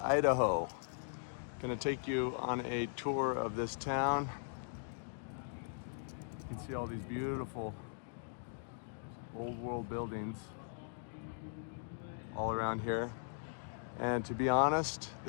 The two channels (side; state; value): right; silent; digital silence